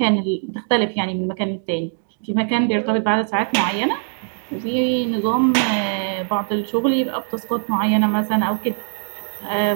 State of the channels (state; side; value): silent; left; digital silence